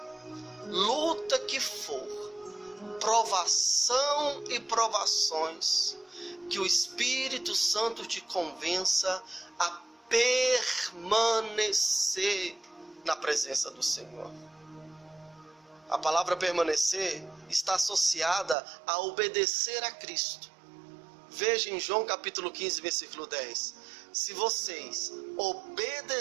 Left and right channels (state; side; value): drops out; left; at 18.6 s